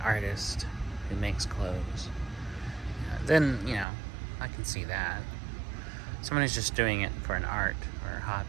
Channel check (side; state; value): left; drops out; at 3.9 s